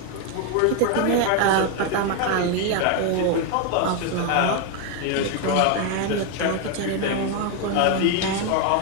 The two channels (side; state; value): both; different; correlation 0.01